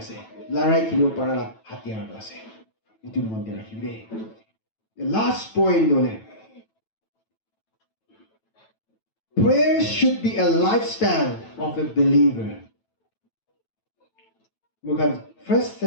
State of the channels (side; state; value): right; late; 9.1 ms